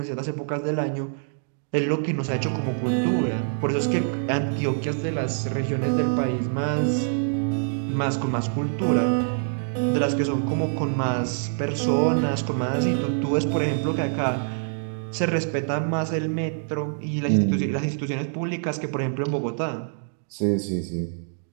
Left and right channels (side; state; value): left; silent; digital silence